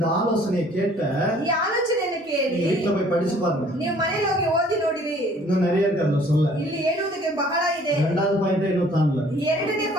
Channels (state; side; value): normal; both; correlation 0.56